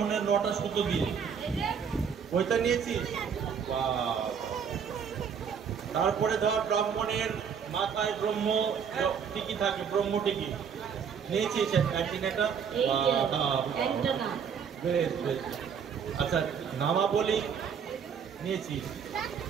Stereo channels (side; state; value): left; quieter; 7.0 dB